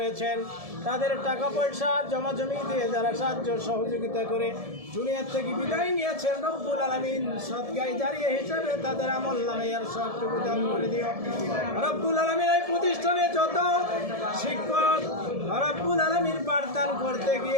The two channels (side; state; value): left; late; 1.7 ms